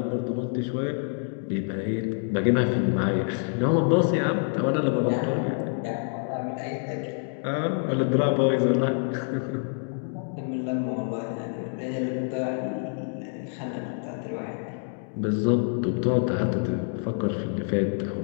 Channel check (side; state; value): right; silent; 56 dB below the other